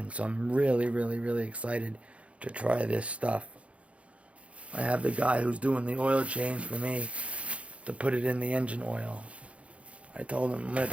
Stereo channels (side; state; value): left; late; 0.063 ms